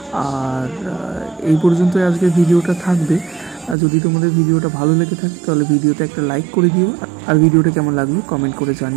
আর এই পর্যন্তই আজকে ভিডিওটা থাকবে। যদি তোমাদের ভিডিওটা ভালো লেগে থাকে তাহলে ভিডিওতে একটা লাইক করে দিও, আর ভিডিওটা কেমন লাগলো কমেন্ট করে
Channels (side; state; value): left; drops out; at 3.8 s